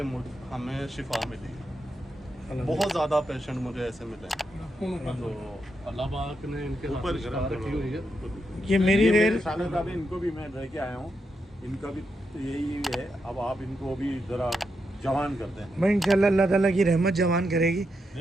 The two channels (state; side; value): normal; both; correlation 0.83